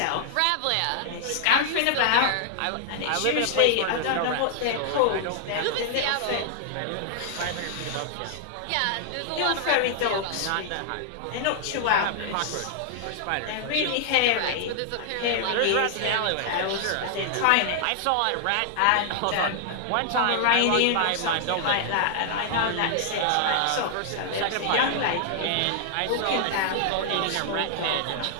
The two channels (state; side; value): different; both; correlation -0.01